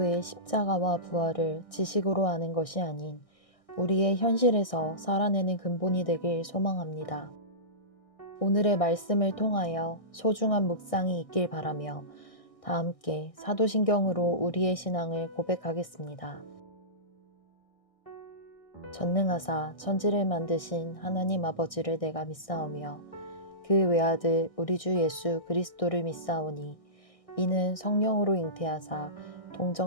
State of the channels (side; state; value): right; late; 1.6 ms